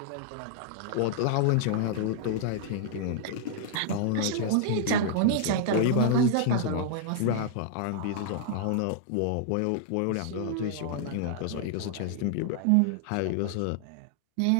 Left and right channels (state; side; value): different; both; correlation -0.01